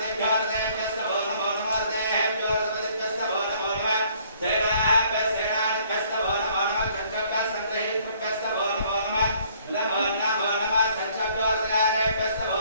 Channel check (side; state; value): both; inverted; correlation -0.61